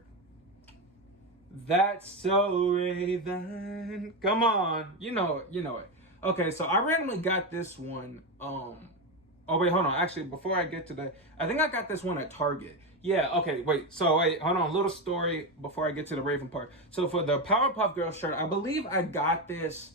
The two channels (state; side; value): normal; both; correlation 0.13